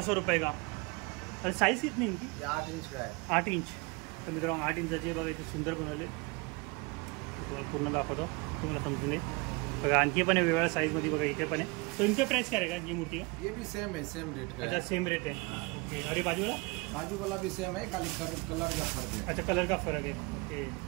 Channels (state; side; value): quieter; left; 27.3 dB